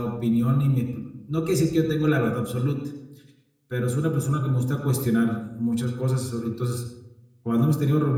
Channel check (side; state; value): both; identical; correlation 1.00